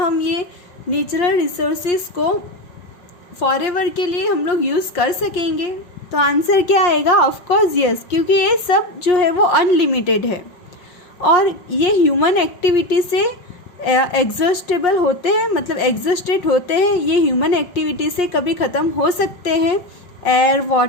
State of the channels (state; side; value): late; right; 5.6 ms